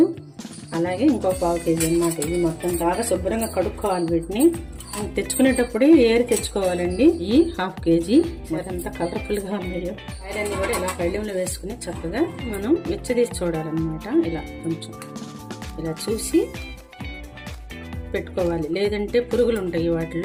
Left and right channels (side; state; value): both; identical; correlation 1.00